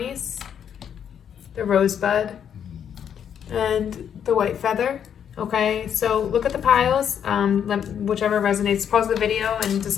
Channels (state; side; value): quieter; right; 8.5 dB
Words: the rosebud, and the white feather. Okay, so look at the piles, whichever resonates. Pause the video and